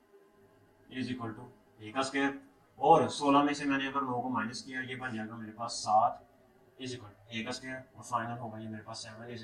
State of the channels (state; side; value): identical; both; correlation 1.00